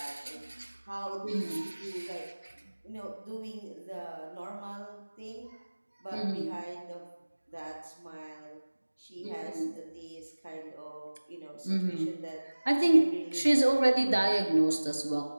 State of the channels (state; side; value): inverted; both; correlation -1.00